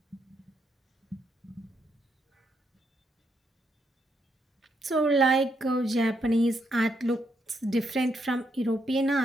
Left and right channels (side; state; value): both; normal; correlation 0.77